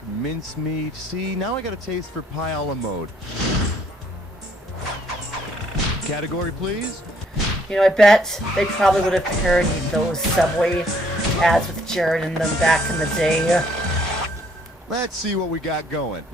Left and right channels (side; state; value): both; normal; correlation 0.65